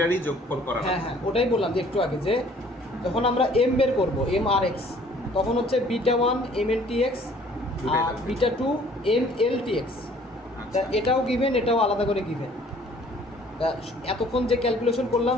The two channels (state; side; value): normal; both; correlation 0.56